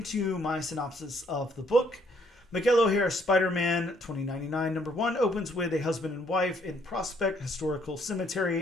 my synopsis of the book. Miguel O'Hare, Spider-Man 2099, number 1, opens with a husband and wife in Prospect Historical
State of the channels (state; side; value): normal; both; correlation 0.67